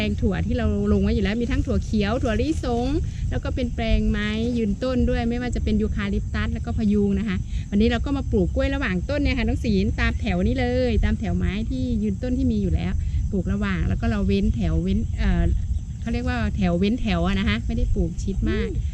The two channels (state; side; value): identical; both; correlation 1.00